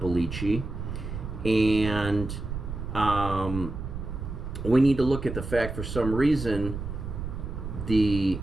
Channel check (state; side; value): noise; right; rumble, 7 dB below the sound